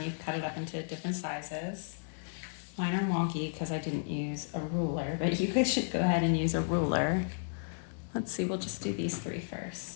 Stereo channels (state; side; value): silent; right; digital silence